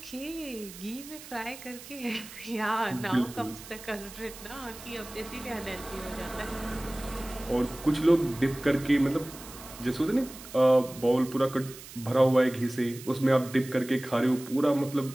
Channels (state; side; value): noise; right; hiss, 16 dB below the sound